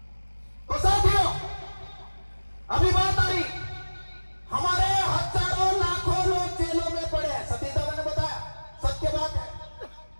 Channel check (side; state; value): both; inverted; correlation -1.00